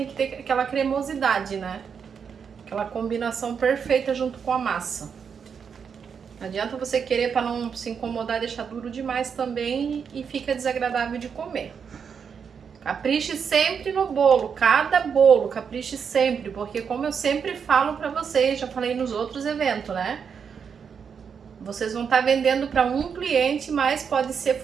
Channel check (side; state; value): left; quieter; 6.7 dB